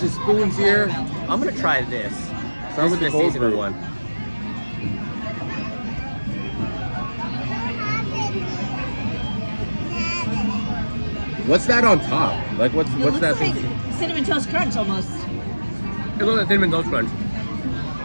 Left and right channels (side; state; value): both; inverted; correlation -1.00